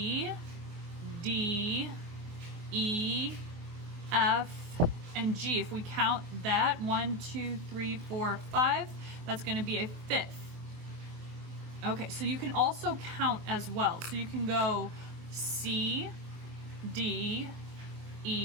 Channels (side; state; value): left; late; 24 ms